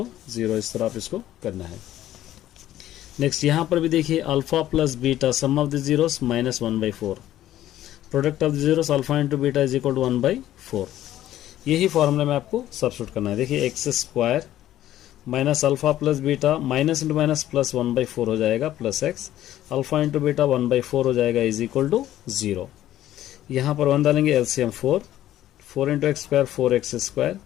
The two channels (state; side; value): quieter; right; 13.1 dB